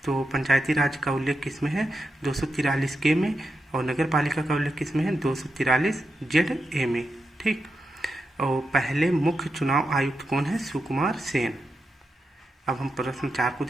तो पंचायती राज का उल्लेख किस में है? 243 के में, और नगर पालिका का उल्लेख किस में है? 243 जेड ए में। ठीक। और पहले मुख्य चुनाव आयुक्त कौन है? सुकुमार सेन। अब हम प्रश्न 4 को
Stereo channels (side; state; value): both; normal; correlation 0.87